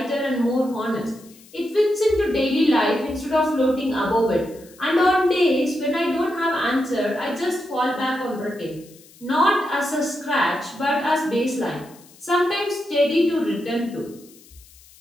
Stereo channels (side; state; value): left; noise; hiss, 25 dB below the sound